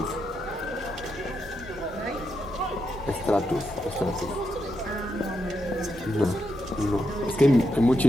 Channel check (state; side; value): normal; both; correlation 0.83